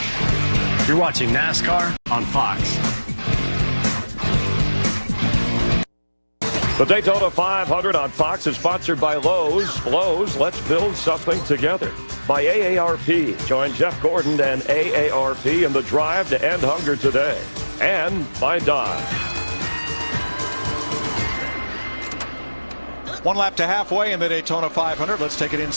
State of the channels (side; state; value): both; inverted; correlation -1.00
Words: You're watching NASCAR on Fox. The Daytona 500 on Fox is sponsored by Lowe's. Lowe's, let's build something together. By AARP. Join Jeff Gordon and AARP in the drive to end hunger today. And by Dodge. One lap to halfway in the Daytona 500. Let's take an